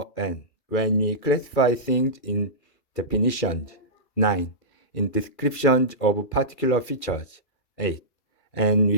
N when we classify things in definitions. 9. In descriptions of particular features. 8. And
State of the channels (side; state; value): right; late; 2.3 ms